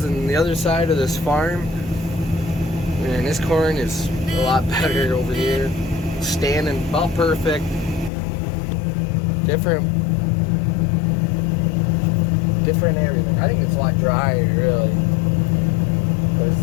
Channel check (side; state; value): right; drops out; at 8.1 s